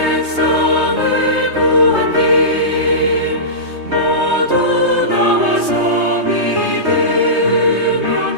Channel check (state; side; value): late; left; 3.2 ms